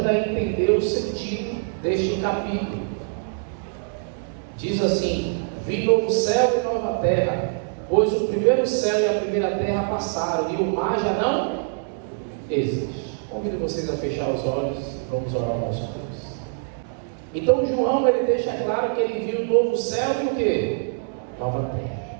a entender o sentido deste capítulo. Diz assim: vi novo céu e nova terra, pois o primeiro céu e a primeira terra passaram, e o mar já não existe. Convido vocês a fechar os olhos e vamos orar ao nosso Deus. Então João, ele deixa claro que ele viu o novo céu e o quê? Nova terra.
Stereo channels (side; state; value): left; silent; digital silence